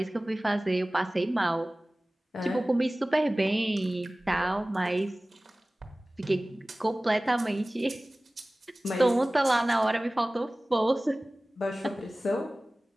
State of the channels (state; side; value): normal; both; correlation 0.98